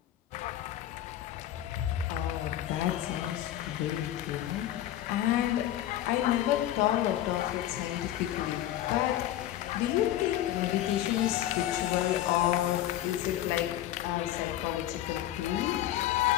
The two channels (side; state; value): right; quieter; 12.9 dB